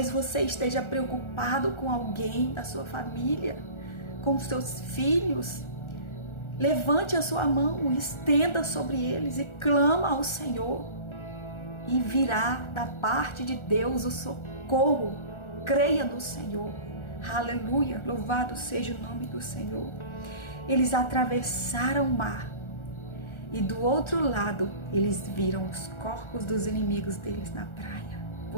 você esteja preocupado com alguém da sua família, com os seus filhos. Levante a sua mão, estenda sobre eles e clama ao Senhor. E virá da parte de Deus o socorro. Creia no Senhor. Aleluia. Louvado seja o nome do Senhor. Eles atravessaram o mar. E do outro lado, eles viram os corpos dos inimigos deles na praia.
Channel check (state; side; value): late; right; 1.4 ms